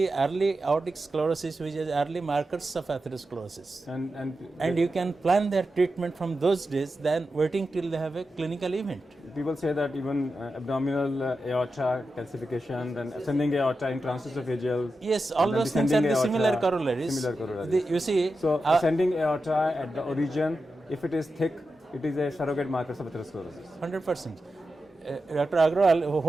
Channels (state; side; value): normal; both; correlation 0.90